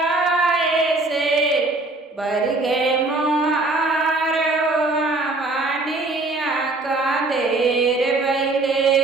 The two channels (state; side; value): quieter; left; 3.1 dB